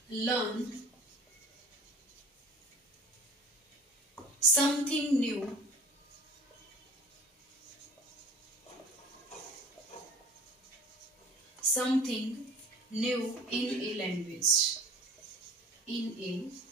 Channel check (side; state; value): both; normal; correlation 0.42